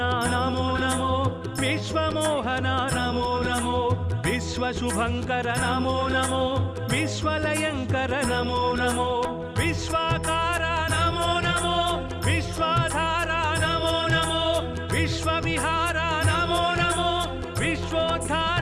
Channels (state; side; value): identical; both; correlation 1.00